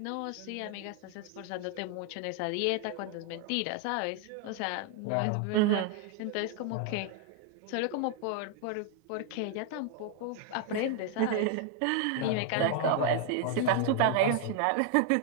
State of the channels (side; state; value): both; different; correlation 0.00